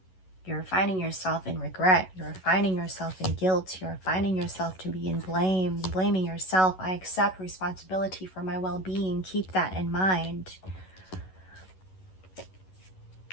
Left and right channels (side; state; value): right; late; 11 ms